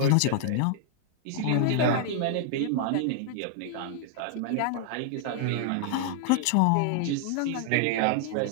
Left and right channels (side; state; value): both; different; correlation 0.00